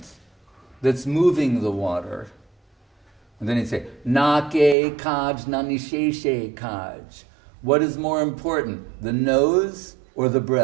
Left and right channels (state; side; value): drops out; left; at 4.8 s